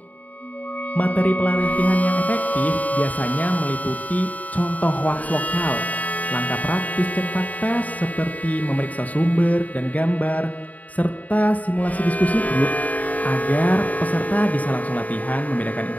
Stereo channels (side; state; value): right; late; 0.073 ms